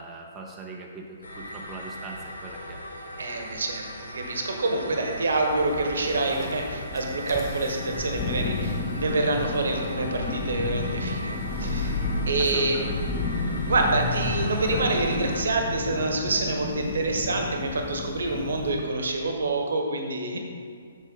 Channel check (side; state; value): both; inverted; correlation -0.60